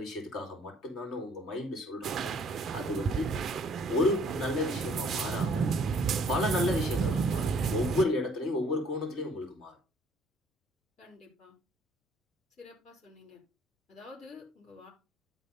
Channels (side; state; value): both; normal; correlation 0.59